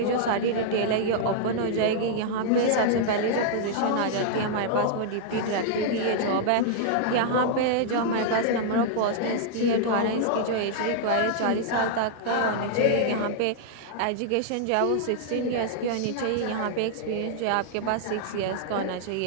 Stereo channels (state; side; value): different; both; correlation -0.01